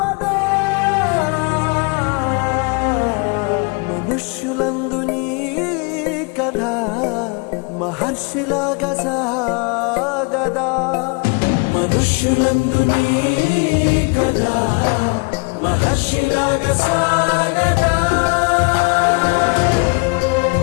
మనుష్యులందు నీ కథ మహర్షిలాగా సాగదా. మనుష్యులందు నీ కథ మహర్షిలాగా సాగదా.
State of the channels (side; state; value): right; quieter; 31.1 dB